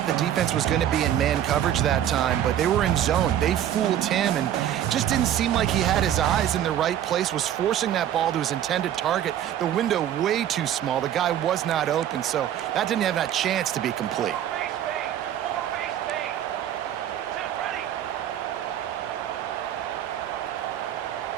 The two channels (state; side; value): quieter; left; 10.9 dB